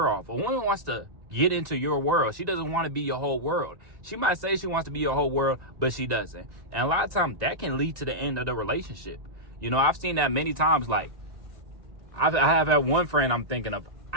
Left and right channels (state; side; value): late; left; 1.9 ms